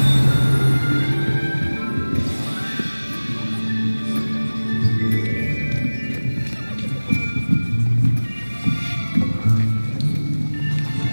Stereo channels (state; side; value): inverted; both; correlation -1.00